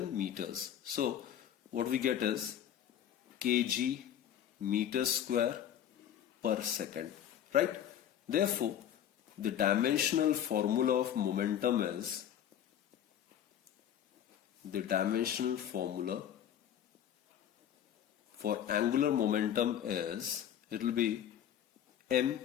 meters. So what we get is kg meter square per second, right? Therefore, the dimensional formula of momentum is, the dimensional formula for angular momentum is, it will be m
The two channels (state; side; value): quieter; right; 10.1 dB